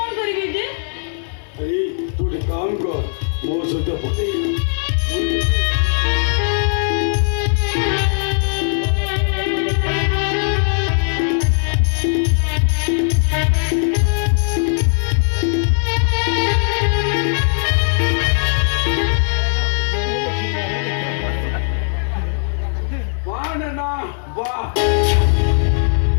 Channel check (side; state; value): right; silent; digital silence